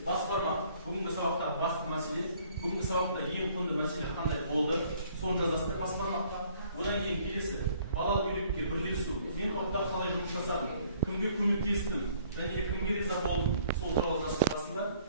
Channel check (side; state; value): both; inverted; correlation -0.60